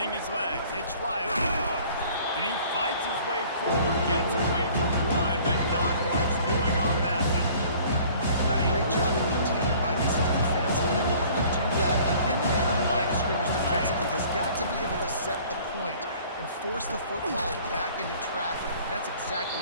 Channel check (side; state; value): both; inverted; correlation -0.52